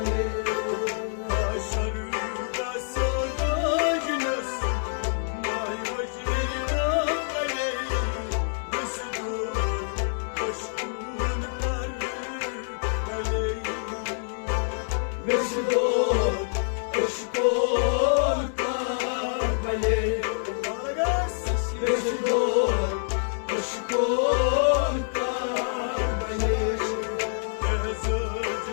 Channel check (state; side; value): silent; right; digital silence